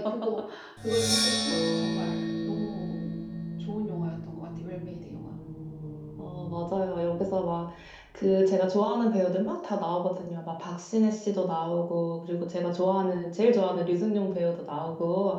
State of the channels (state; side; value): identical; both; correlation 1.00